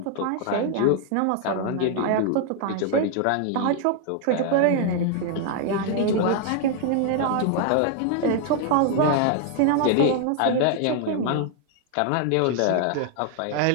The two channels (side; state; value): both; different; correlation 0.00